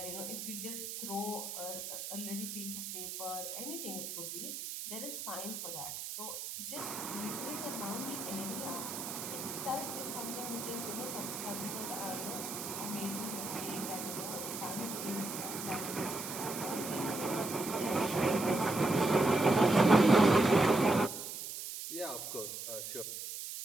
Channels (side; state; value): right; noise; hiss, 7 dB below the sound